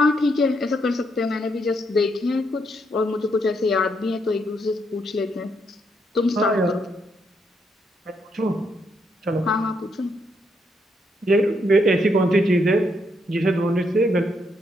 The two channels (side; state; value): both; normal; correlation 0.76